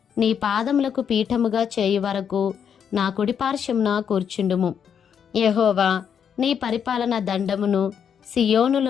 నీ పాదములకు పీఠముగా చేయు వరకు నా కుడిపార్శ్వమున కూర్చుండుము. యెహోవా నీ పరిపాలన దండమును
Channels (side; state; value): right; quieter; 7.8 dB